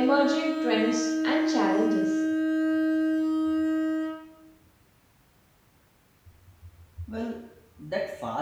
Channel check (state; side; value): identical; both; correlation 1.00